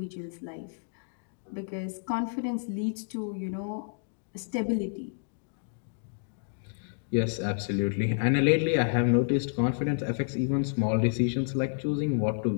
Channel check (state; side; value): silent; right; digital silence